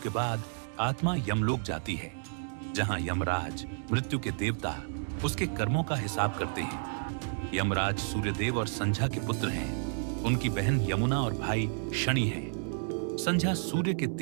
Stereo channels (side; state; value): left; silent; digital silence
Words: बाद आत्मा यमलोक जाती है, जहां यमराज, मृत्यु के देवता, उसके कर्मों का हिसाब करते हैं। यमराज सूर्यदेव और संध्या के पुत्र हैं। उनकी बहन यमुना और भाई शनि हैं। संध्या सूर्य के